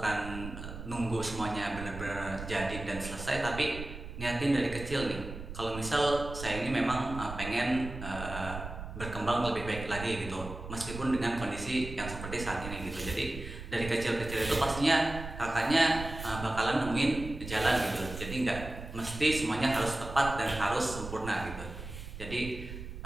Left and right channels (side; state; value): right; noise; rumble, 10 dB below the sound